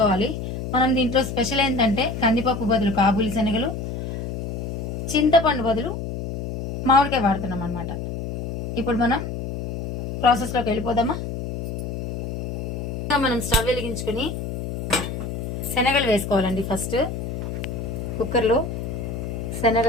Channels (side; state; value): left; noise; hum, 5 dB below the sound